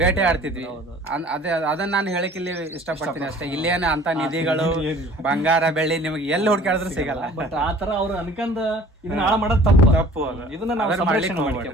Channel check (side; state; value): both; normal; correlation 0.49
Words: ಆಡ್ತಿದ್ವಿ. ಅದನ್ನ ನಾನು ಹೇಳಕ್ ಇಲ್ಲಿ ಇಷ್ಟಪಡ್ತೀನಿ ಅಷ್ಟೇ. ಇಲ್ಲೇನ ಅಂತ ನಿಧಿಗಳು ಬಂಗಾರ ಬೆಳ್ಳಿ ನಿಮ್ಗೆ ಎಲ್ಲಿ ಹುಡ್ಕಾಡಿದ್ರು ಸಿಗಲ್ಲ. ಬಟ್ ಆತರ ಅವ್ರು ಅನ್ಕಂದ ಇದನ್ನ ಹಾಳ ಮಾಡೋದು ತಪ್ಪು. ಇದನ್ನ